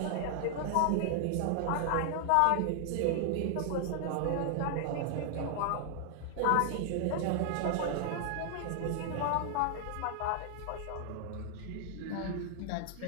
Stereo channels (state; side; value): different; both; correlation 0.00